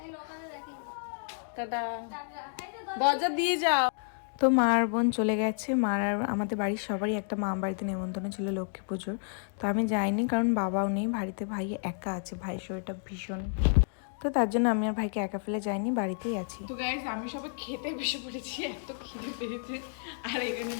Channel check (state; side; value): silent; right; digital silence